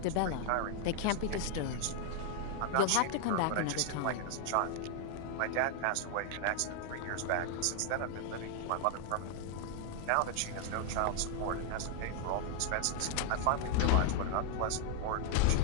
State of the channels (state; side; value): different; both; correlation 0.00